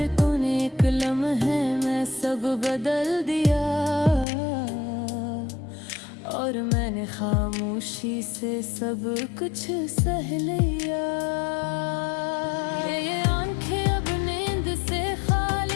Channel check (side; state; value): right; drops out; at 4.2 s